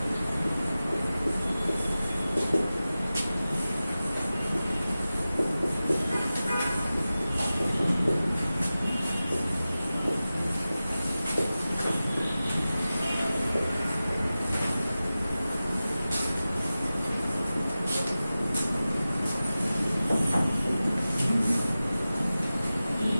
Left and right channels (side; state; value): both; inverted; correlation -0.95